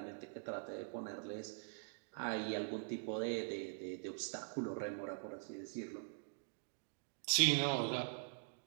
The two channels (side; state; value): left; silent; digital silence